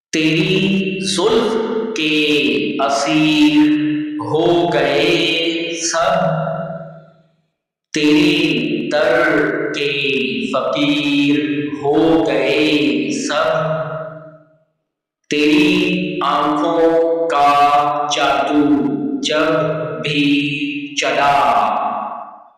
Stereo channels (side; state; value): both; identical; correlation 1.00